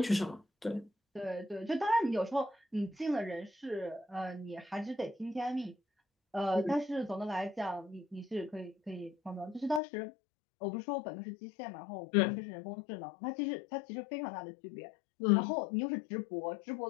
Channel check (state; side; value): drops out; right; at 9.8 s